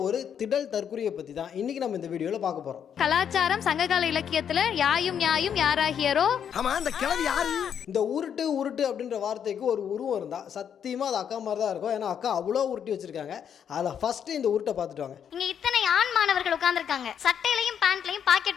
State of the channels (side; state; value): right; quieter; 8.3 dB